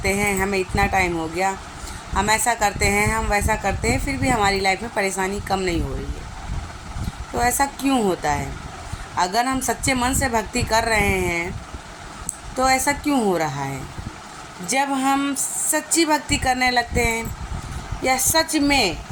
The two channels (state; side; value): identical; both; correlation 1.00